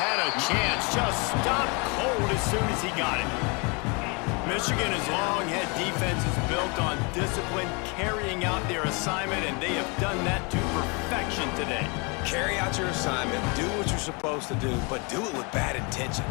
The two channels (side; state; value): right; quieter; 31.5 dB